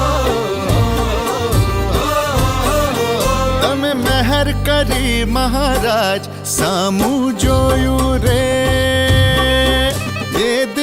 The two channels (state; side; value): identical; both; correlation 1.00